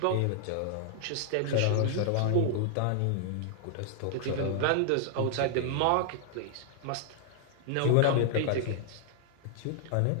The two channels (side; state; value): both; different; correlation -0.01